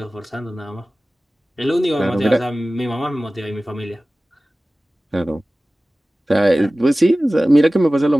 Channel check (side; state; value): both; normal; correlation 0.97